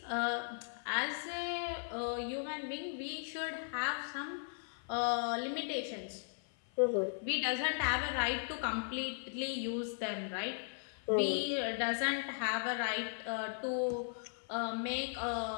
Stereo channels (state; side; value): silent; right; 53 dB below the other